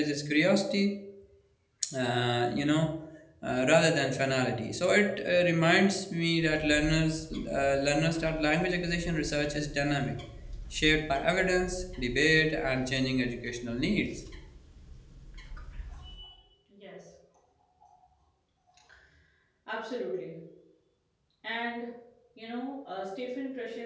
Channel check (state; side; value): identical; both; correlation 1.00